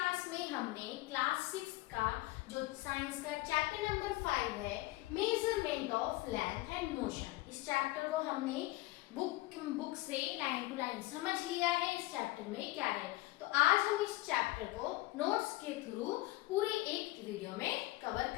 में हमने क्लास 6 का जो साइंस का चैप्टर नंबर 5 है, measurement of length and motion, इस चैप्टर को हमने बुक से लाइन टू लाइन समझ लिया है। इस चैप्टर में क्या है, तो आज हम इस चैप्टर को नोट्स के थ्रू पूरे एक वीडियो में कवर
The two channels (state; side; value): quieter; right; 19.4 dB